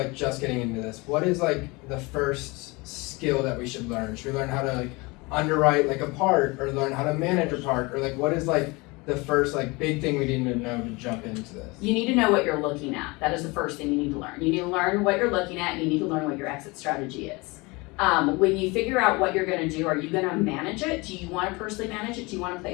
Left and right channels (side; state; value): right; quieter; 25.3 dB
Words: just getting into this, what is like the first skill that we should learn? Should we learn how to like underwrite like a park, or learn how to manage a park, or like what is like the first like big thing we need to know to jump into this? You need to know what you're looking at, that is the first thing you need to learn. You need to learn what you're looking at, and you need to learn what your exit strategy is. When you figure out what you're gonna do, are you gonna manage it? Do you wanna personally manage it? Do you wanna